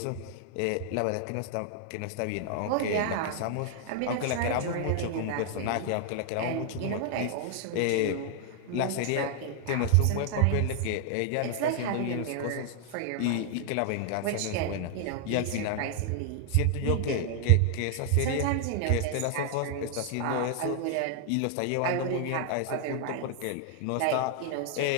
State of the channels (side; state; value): both; different; correlation 0.00